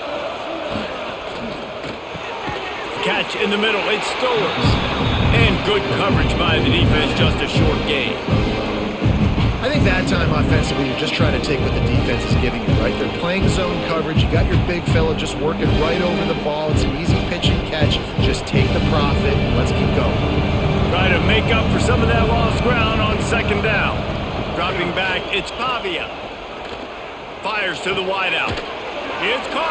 Catch in the middle, it's Stowers. And good coverage by the defense, just a short gain. I think that time offensively, you're just trying to take what the defense is giving you, right? They're playing zone coverage. You got your big fella just working right over the ball. It's an easy pitch and catch. Just take the profit and let's keep going. Try to make up for some of that lost ground on 2nd down. Dropping back, it's Pavia. Fires to the wideout. It's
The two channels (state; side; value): identical; both; correlation 1.00